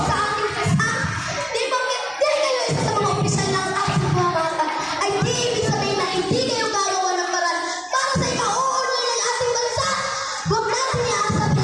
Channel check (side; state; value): both; identical; correlation 1.00